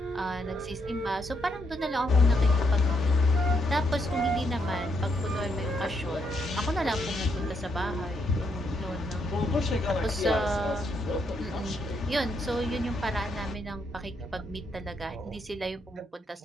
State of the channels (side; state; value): both; normal; correlation 0.77